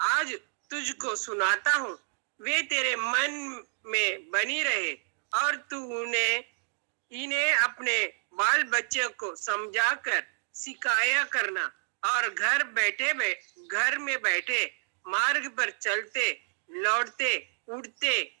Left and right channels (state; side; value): silent; left; digital silence